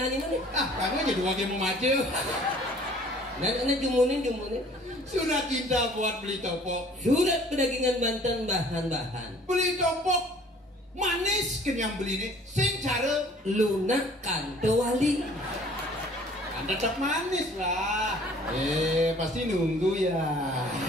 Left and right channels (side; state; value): both; normal; correlation 0.53